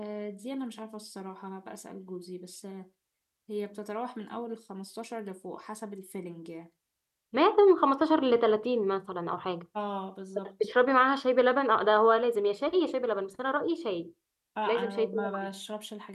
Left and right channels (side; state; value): both; identical; correlation 1.00